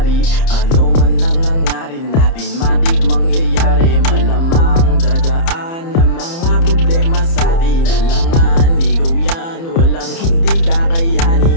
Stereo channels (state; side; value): late; right; 30 ms